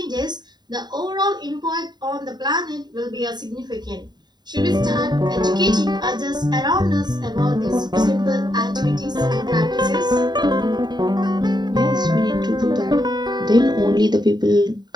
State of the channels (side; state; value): left; late; 0.20 ms